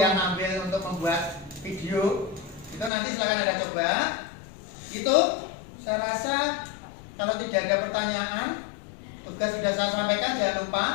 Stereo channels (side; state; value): right; drops out; at 2.9 s